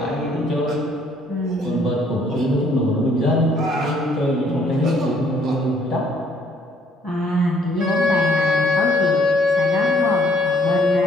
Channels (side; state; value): both; normal; correlation 0.64